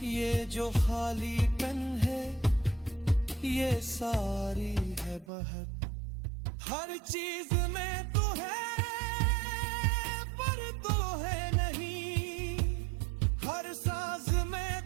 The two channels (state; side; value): drops out; left; at 5.2 s